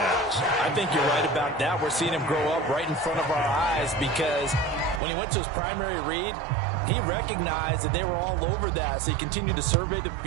I think you're right about that. We're seeing him grow up right in front of our eyes because when he went to his primary read, he recognized that they were all over that. So he continued to survey the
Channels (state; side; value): drops out; left; at 5.0 s